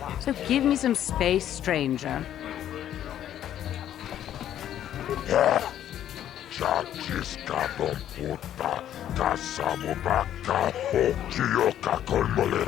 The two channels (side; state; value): right; quieter; 11.1 dB